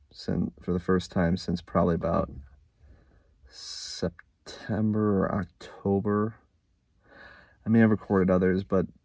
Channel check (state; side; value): identical; both; correlation 1.00